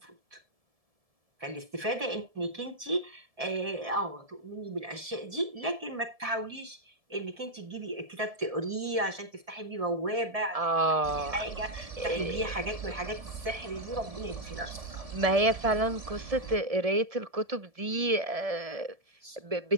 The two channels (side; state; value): left; late; 1.7 ms